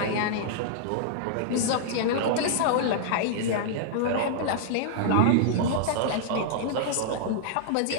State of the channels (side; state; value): both; different; correlation -0.01